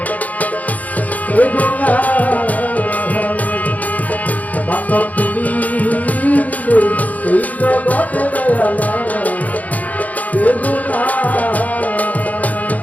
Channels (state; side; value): late; right; 0.076 ms